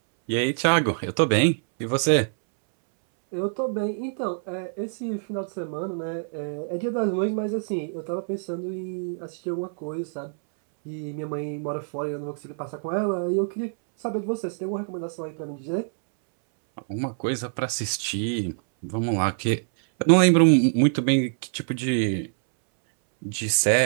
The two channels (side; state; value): left; silent; 61 dB below the other